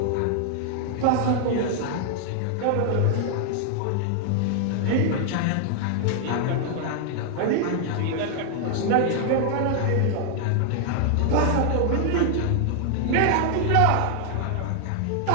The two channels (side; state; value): both; different; correlation 0.00